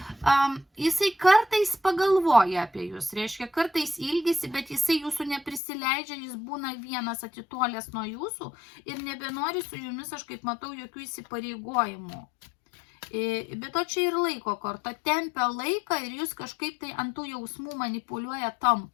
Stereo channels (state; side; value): drops out; right; at 5.6 s